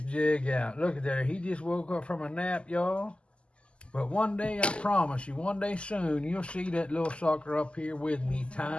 jig out. Look at there. He just woke up from a nap, y'all. But one day, I promise you, one day soon, you'll see that little sucker up here with me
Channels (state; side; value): late; right; 0.053 ms